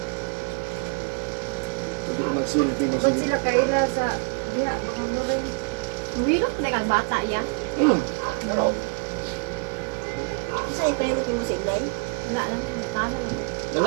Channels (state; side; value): quieter; left; 39.8 dB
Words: Pwede magsilbi na Kung sila. sila kaila sa diha baka mo rin. Mahirap pa ka bata yan. Pero, Isa ipalimot mo si Ilay. Wala naman, tama lang.